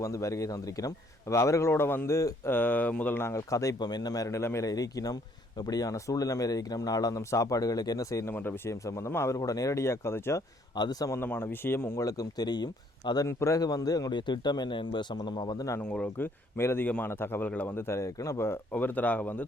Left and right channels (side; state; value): both; normal; correlation 0.65